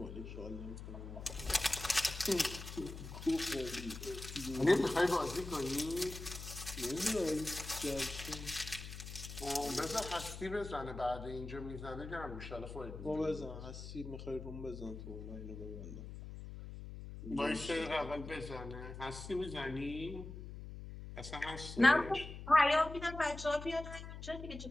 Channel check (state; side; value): noise; left; hum, 10 dB below the sound